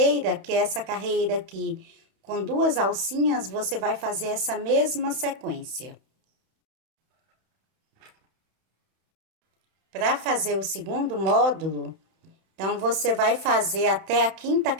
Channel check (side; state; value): left; late; 31 ms